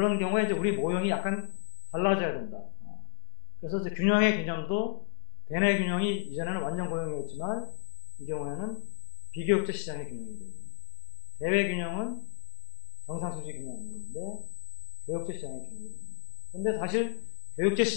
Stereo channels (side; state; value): right; silent; 56 dB below the other